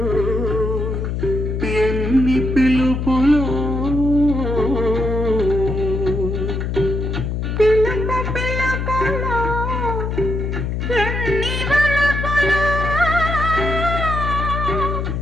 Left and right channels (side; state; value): left; noise; hum, 2 dB below the sound